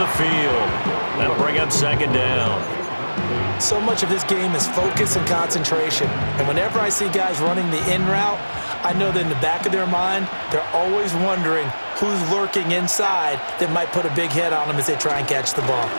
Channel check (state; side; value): inverted; both; correlation -1.00